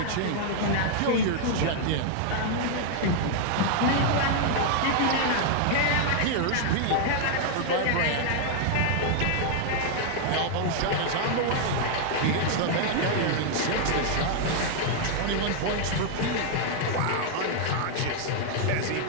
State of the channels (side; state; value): both; different; correlation 0.00